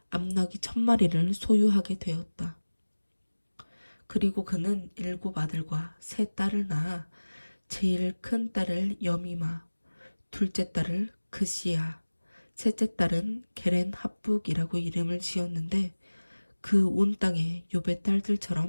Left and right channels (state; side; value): inverted; both; correlation -1.00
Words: 암나귀 1,000마리를 소유하게 되었다. 그리고 그는 7 아들과 3 딸을 낳아 제일 큰 딸을 여미마, 둘째 딸을 그시야, 셋째 딸은 게렌 합북이라고 이름을 지었는데 그 온 땅에 욥의